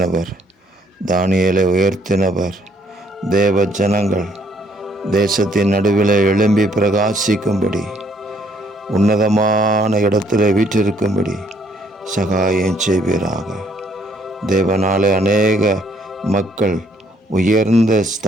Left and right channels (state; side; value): normal; both; correlation 0.67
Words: தானியேலை உயர்த்தினவர், தேவ ஜனங்கள் தேசத்தின் நடுவில் எழும்பி பிரகாசிக்கும்படி, உன்னதமான இடத்துல வீற்றிருக்கும்படி சகாயம் செய்வீராக. தேவனாலே அநேக மக்கள் உயர்ந்த